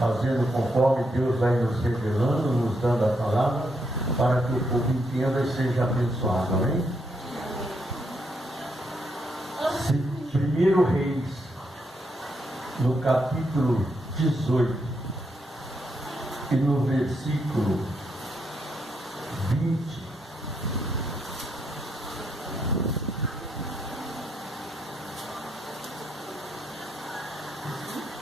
conforme Deus vai nos revelando, nos dando a palavra, para que o povo entenda e seja abençoado. Amém? 1 Reis, no capítulo 18 e no versículo 20.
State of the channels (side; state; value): both; normal; correlation 0.78